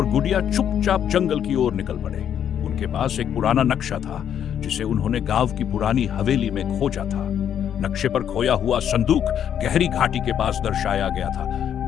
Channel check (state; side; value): quieter; right; 9.3 dB